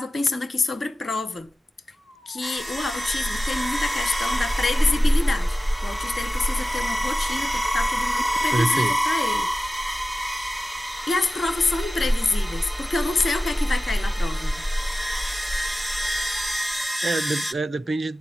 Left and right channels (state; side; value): normal; both; correlation 0.95